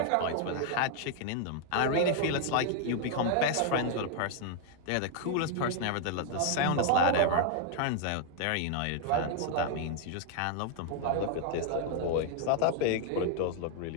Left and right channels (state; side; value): different; both; correlation 0.00